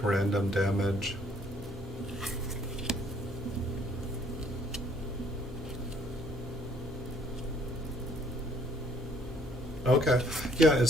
random damage. Okay, yeah,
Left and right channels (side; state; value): both; normal; correlation 0.63